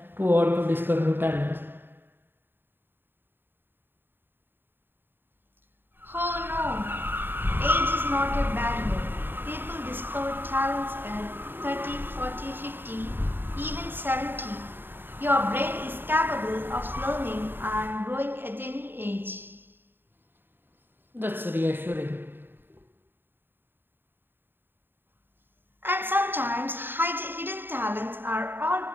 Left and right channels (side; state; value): left; late; 0.097 ms